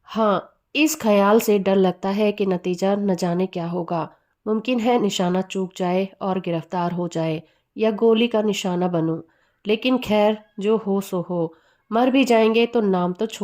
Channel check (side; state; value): both; identical; correlation 1.00